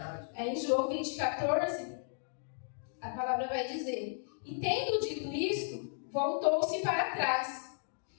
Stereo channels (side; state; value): right; silent; digital silence